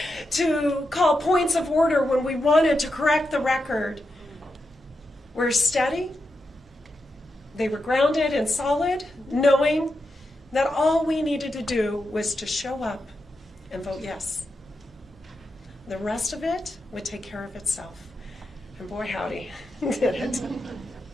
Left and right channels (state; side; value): normal; both; correlation 0.87